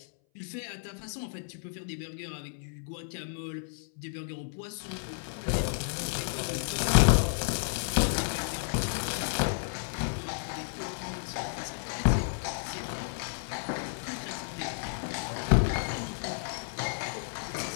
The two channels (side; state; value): right; silent; 56 dB below the other